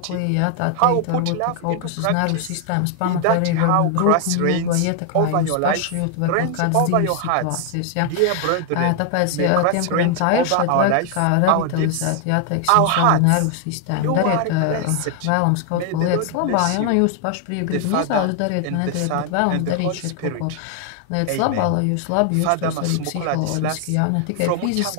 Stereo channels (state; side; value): different; both; correlation 0.00